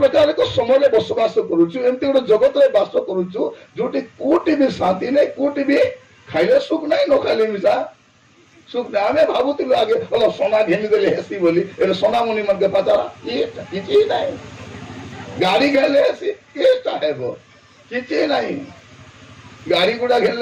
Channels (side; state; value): both; identical; correlation 1.00